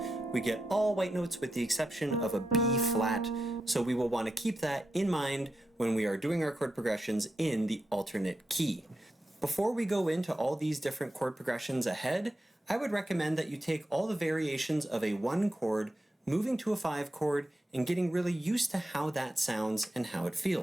we get all white notes with the exception of a B flat, so we will want to keep that in mind when we are doing our chord progressions in the alternate key. Before we go into all these different chord progressions ahead, I would recommend that you take all the variations of a 1 chord, moving to a 5 chord, and getting really used to how that sounds and how it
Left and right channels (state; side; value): normal; both; correlation 0.88